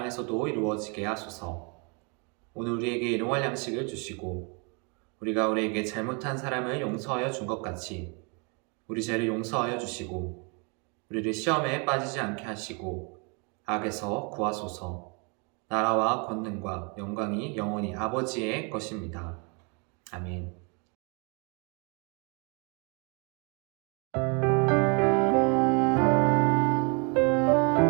이루어지게 하소서. 오늘 우리에게 일용할 양식을 주시고 우리가 우리에게 잘못한 사람을 용서하여 준 것 같이 우리 죄를 용서하여 주시고 우리를 시험에 빠지지 않게 하시고 악에서 구하소서. 나라와 권능과 영광이 영원히 아버지의 것입니다. 아멘.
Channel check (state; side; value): quieter; left; 33.9 dB